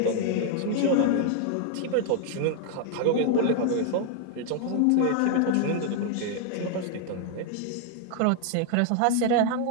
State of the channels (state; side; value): different; both; correlation 0.00